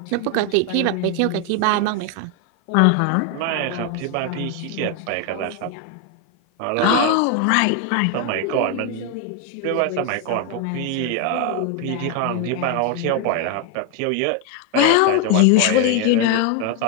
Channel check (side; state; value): both; different; correlation 0.01